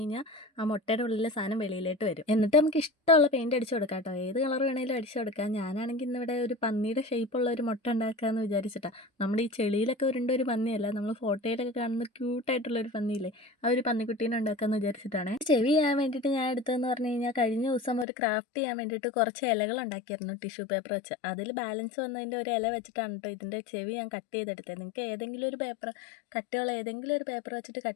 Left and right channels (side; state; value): right; drops out; at 18.1 s